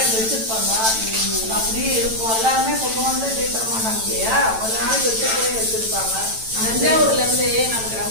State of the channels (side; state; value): left; late; 9.0 ms